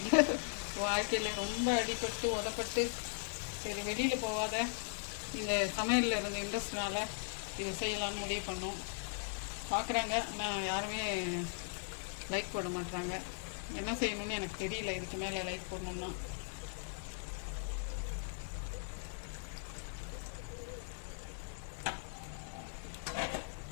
வாழ்க்கையில் ரொம்ப அடிபட்டு உதப்பட்டு சரி வெளியில் போகாத இந்த சமையலில் இருந்த இன்ட்ரெஸ்ட்னால இது செய்யலான்னு முடிவு பண்ணோம். பார்க்குறாங்க, நான் யாருமே லைக் போட மாட்டாங்க. என்ன செய்யணும்னு எனக்கு தெரியல. இதுக்கு மேலே லைக் போடணும்னா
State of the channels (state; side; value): silent; right; digital silence